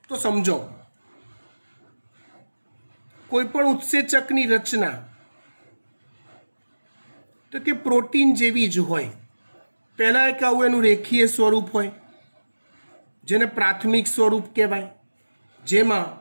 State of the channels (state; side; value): inverted; both; correlation -1.00